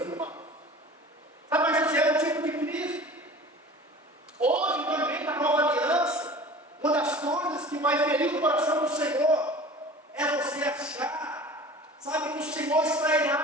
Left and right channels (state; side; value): normal; both; correlation 0.40